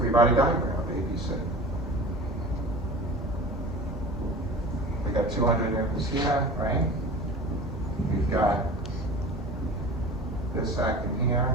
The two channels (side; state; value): both; normal; correlation 0.37